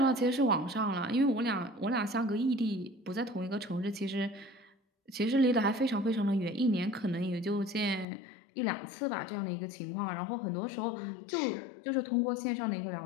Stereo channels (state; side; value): drops out; right; at 8.1 s